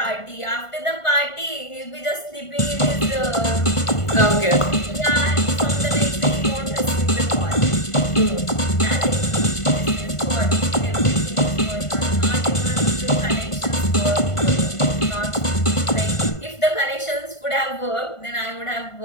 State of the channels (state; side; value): late; right; 1.5 ms